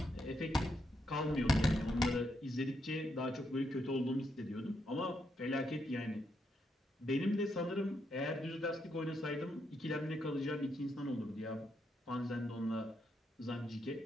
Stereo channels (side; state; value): both; normal; correlation 0.79